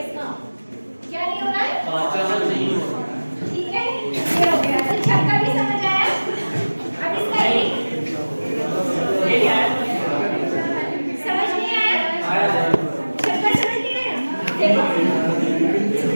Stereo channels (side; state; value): both; inverted; correlation -1.00